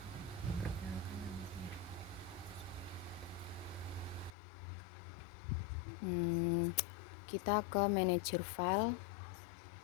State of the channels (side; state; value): right; drops out; at 4.4 s